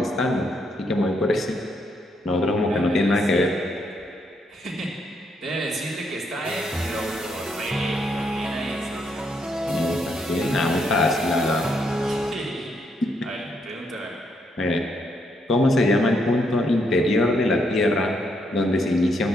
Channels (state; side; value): normal; both; correlation 0.75